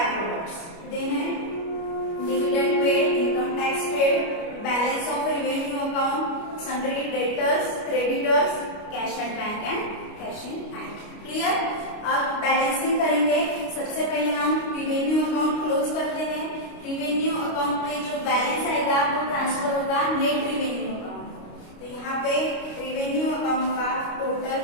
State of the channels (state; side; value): late; right; 29 ms